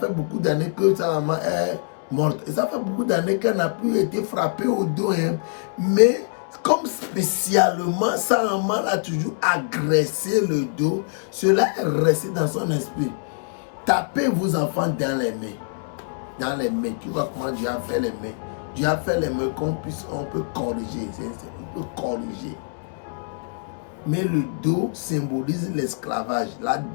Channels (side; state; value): right; silent; 62 dB below the other